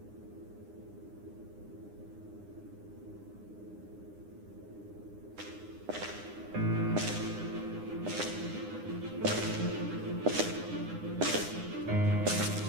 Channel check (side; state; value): left; late; 9.8 ms